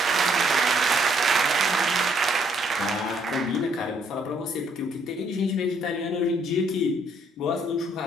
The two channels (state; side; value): normal; both; correlation 0.68